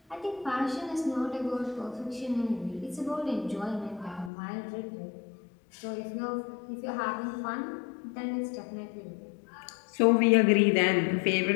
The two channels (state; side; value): drops out; right; at 4.3 s